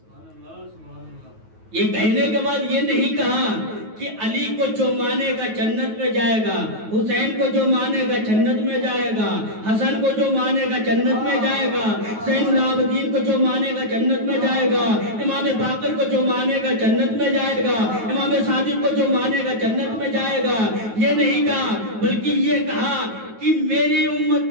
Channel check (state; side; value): late; left; 9.2 ms